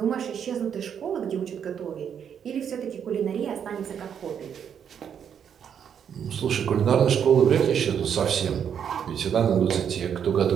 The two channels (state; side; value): quieter; left; 8.1 dB